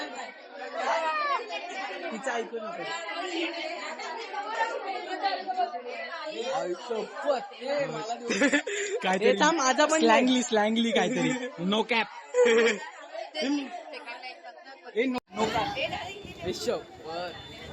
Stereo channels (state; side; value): identical; both; correlation 1.00